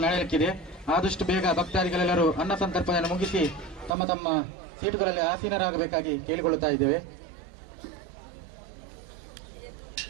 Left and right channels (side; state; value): left; drops out; at 3.9 s